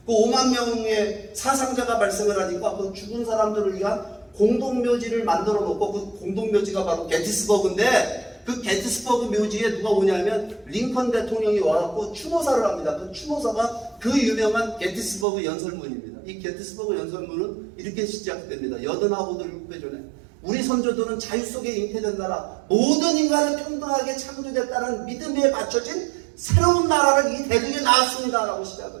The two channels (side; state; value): left; drops out; at 15.2 s